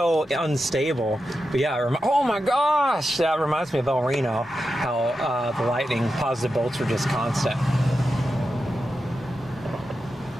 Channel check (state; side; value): normal; both; correlation 0.89